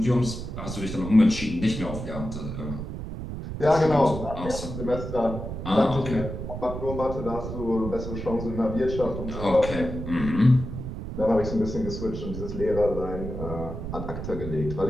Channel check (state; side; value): noise; right; rumble, 7 dB below the sound